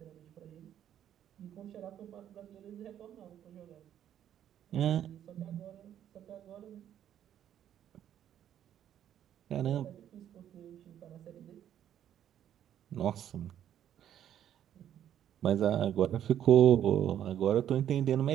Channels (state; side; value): quieter; left; 10.5 dB